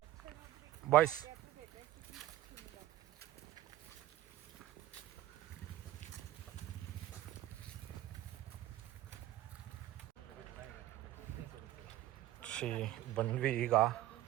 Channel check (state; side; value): quieter; left; 14.7 dB